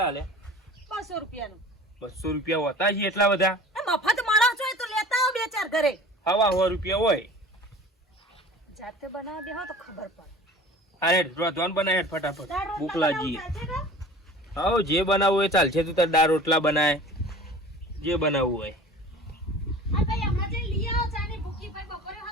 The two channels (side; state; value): both; normal; correlation 0.42